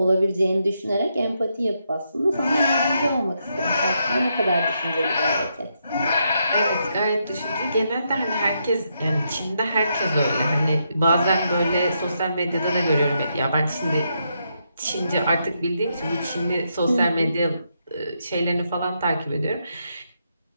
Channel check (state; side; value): inverted; both; correlation -0.80